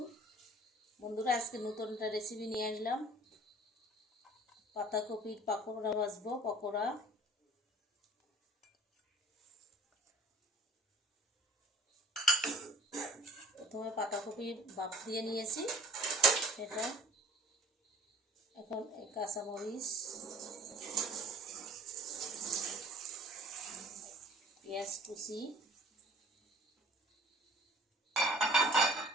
বন্ধুরা, আজকে নতুন একটা রেসিপি নিয়ে আসলাম। পাতাকপির পকোড়া ভাজবো। পকোড়া প্রথমে পাতাকপি বাফ দিয়ে নিয়েছি, সেটা এখন কাঁচামরিচ, পেঁয়াজ কুচি,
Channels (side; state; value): both; normal; correlation 0.49